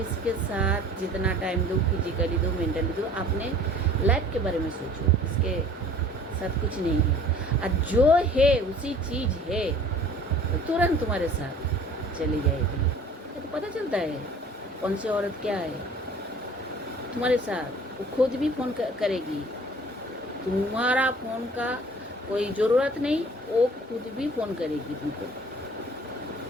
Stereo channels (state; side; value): normal; both; correlation 0.49